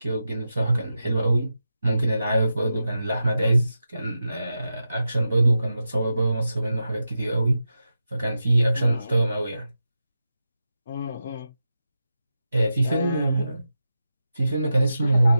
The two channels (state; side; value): inverted; both; correlation -0.90